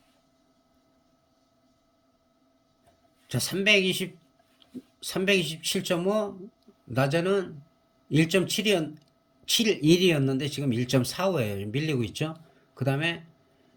자, 327.5, 낮에는 1.7이 1.71이었는데 지금 1.45예요. 밀리고 있죠. 그 다음에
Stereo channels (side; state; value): both; identical; correlation 1.00